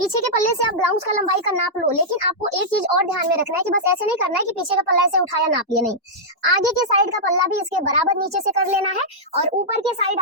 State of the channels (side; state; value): both; normal; correlation -0.09